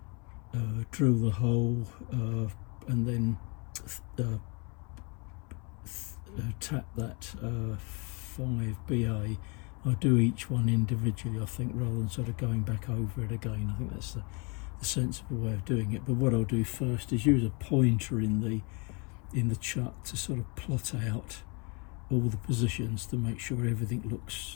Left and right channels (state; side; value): quieter; right; 32.1 dB